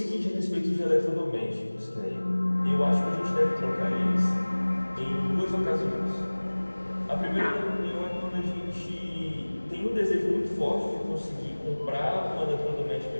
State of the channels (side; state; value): both; inverted; correlation -1.00